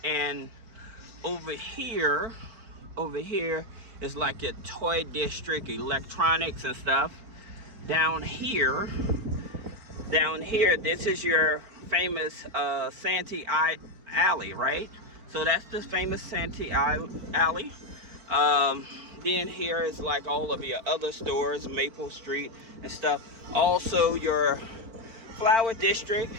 and over here is like a toy district, electronics and stuff. Down here, this is your famous Santee Alley, right? So that's the famous Santee Alley. Then here is like all of your other stores, Maple Street and stuff. Also, your flower district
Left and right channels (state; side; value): late; left; 4.4 ms